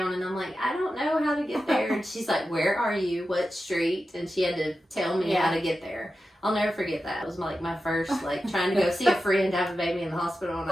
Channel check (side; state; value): both; normal; correlation 0.92